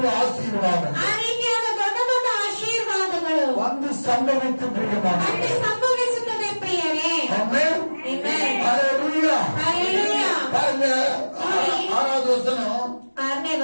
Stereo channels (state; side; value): inverted; both; correlation -1.00